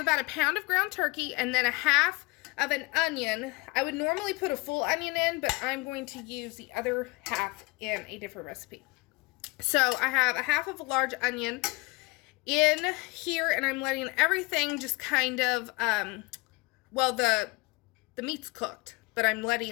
a pound of ground turkey and then a half of an onion. I would normally put a full onion in, but I'm going to use the other half in a different recipe. So I have a half of a large onion in here, and I'm letting everything just kind of, well, the meat's cooked, but I'm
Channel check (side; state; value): right; quieter; 24.9 dB